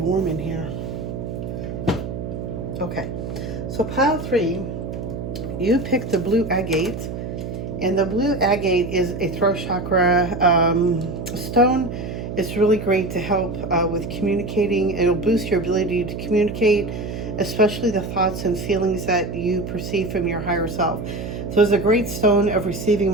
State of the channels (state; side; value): noise; right; hum, 6 dB below the sound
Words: in here. Okay. So pile 3, you pick the blue agate. And the blue agate is a throat chakra stone. It's really great to help with communicating. It'll boost your ability to communicate, especially the thoughts and feelings that you perceive from your higher self. So it's a great stone of receiving